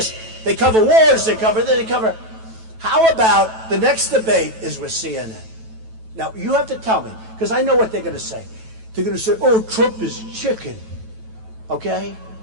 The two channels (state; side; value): late; left; 9.1 ms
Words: They cover wars, they cover. How about the next debate is with CNN? Now, you have to tell me, because I know what they're going to say. They're going to say, oh, Trump is chicken. Okay?